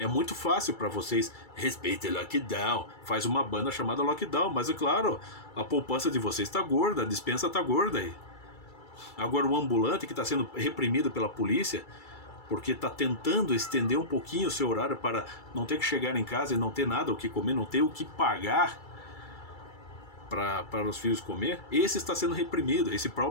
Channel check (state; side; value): late; right; 2.3 ms